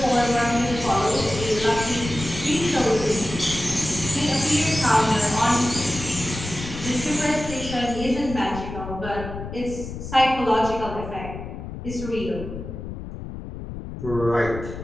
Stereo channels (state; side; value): noise; left; rumble, 9 dB below the sound